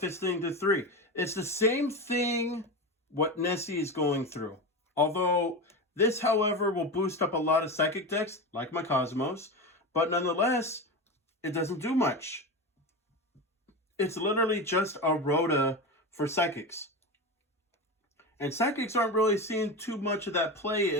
this thing to 3. It's the same thing what Nessie is going through. Although this, however, will boost up a lot of psychic decks, like my Cosmos. But nonetheless, it doesn't do much. It's literally just a Rhoda for psychics. And psychics aren't really seeing too much of that play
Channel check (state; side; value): normal; both; correlation 0.22